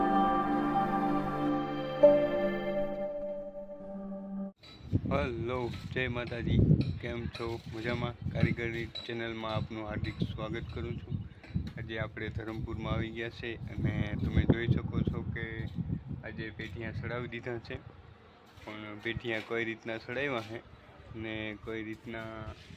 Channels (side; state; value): both; identical; correlation 1.00